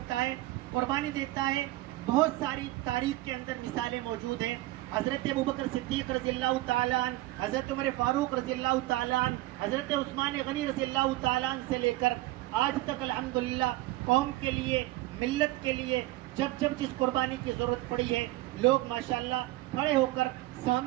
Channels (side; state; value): left; quieter; 18.3 dB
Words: ہے، قربانی دیتا ہے۔ بہت ساری تاریخ کے اندر مثالیں موجود ہیں۔ حضرت ابوبکر صدیق رضی اللہ تعالیٰ عنہ، حضرت عمر فاروق رضی اللہ تعالیٰ عنہ، حضرت عثمان غنی رضی اللہ تعالیٰ عنہ سے لے کر آج تک الحمدللہ قوم کے لیے، ملت کے لیے جب جس قربانی کی ضرورت پڑی ہے، لوگ ماشاءاللہ کھڑے ہو کر